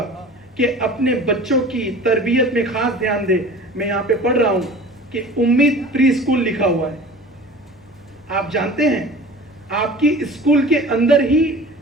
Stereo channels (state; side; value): normal; both; correlation 0.41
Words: कि अपने बच्चों की तरबियत में खास ध्यान दे। मैं यहां पे पढ़ रहा हूं कि उम्मीद प्री स्कूल लिखा हुआ है। आप जानते हैं आपकी स्कूल के अंदर ही